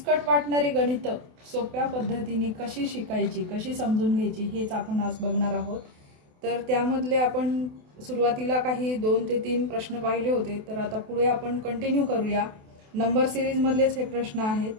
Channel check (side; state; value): left; late; 28 ms